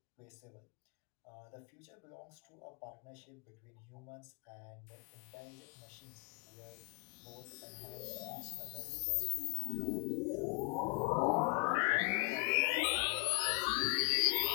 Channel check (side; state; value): right; quieter; 32.9 dB